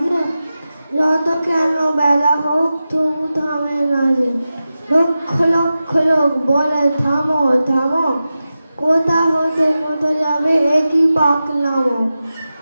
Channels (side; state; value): both; inverted; correlation -0.93